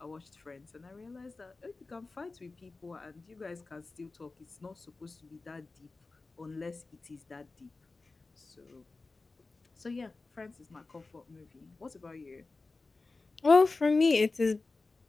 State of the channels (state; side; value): quieter; right; 3.7 dB